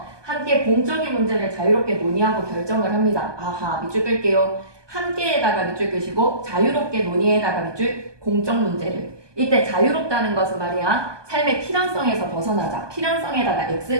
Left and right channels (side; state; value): left; late; 1.2 ms